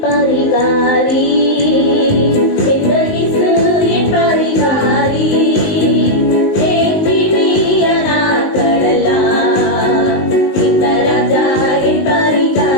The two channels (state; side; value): late; right; 19 ms